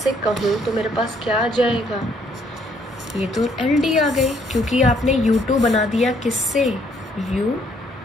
कहूँ तो मेरे पास क्या आ जाएगा, ये तो एल डी आ गई, क्योंकि आपने u2 बना दिया किससे,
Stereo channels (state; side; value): normal; both; correlation 0.67